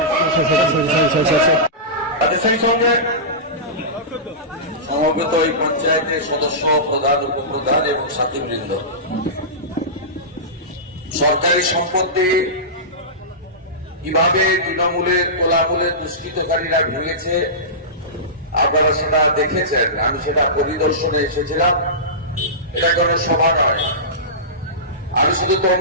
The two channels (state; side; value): normal; both; correlation -0.19